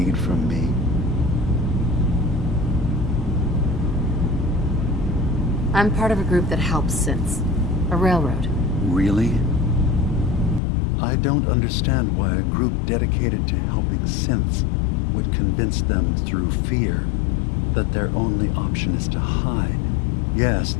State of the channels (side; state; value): right; drops out; at 10.6 s